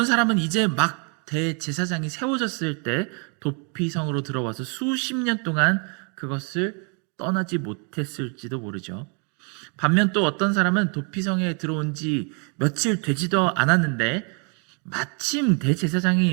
사람은 이제 막 대제사장이 세워졌을 때 도피성으로 들어와서 수십 년 동안 그것을 떠나지 못했을지도 모르죠. 반면 또 어떤 사람은 도피성에 들어온 지 며칠 되지도 않았는데 마침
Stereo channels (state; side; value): quieter; left; 37.6 dB